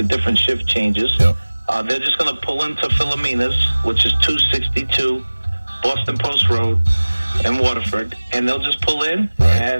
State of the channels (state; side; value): inverted; both; correlation -1.00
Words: different shift changes, they're just going to pull into Philomena's, which is 262 Boston Post Road in Waterford, and they'll just pull in